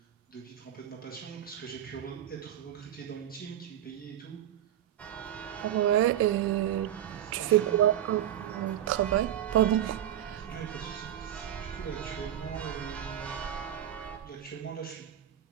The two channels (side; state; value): left; quieter; 11.3 dB